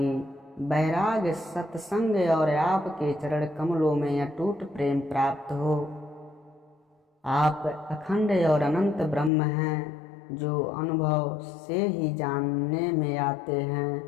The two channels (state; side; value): drops out; right; at 9.3 s